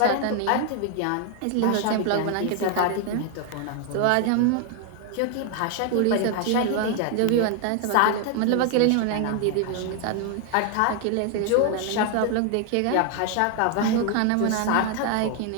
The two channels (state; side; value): different; both; correlation 0.00